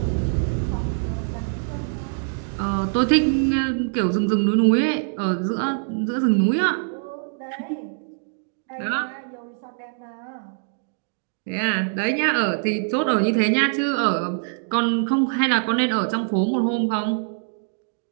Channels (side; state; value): left; silent; digital silence